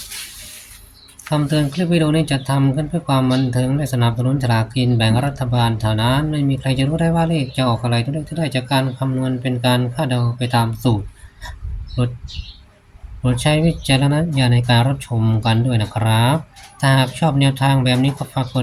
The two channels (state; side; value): identical; both; correlation 1.00